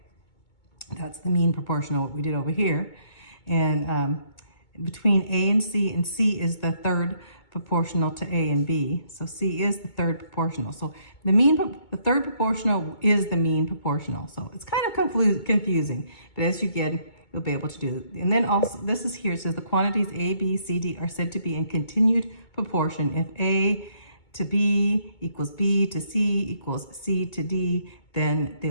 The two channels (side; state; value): right; late; 2.2 ms